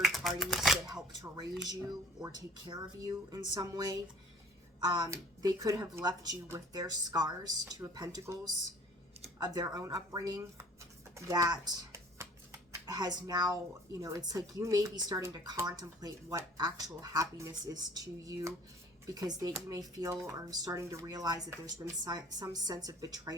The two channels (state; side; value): normal; both; correlation 0.51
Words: parties that helped to raise you or take care of you in some way. They could have left you with their scars, Two of Pentacles, of their own upbringing that has now, you know, it's like you may be starting to contemplate what actual happiness is to you, because you may feel or starting to realize that there's been some sense of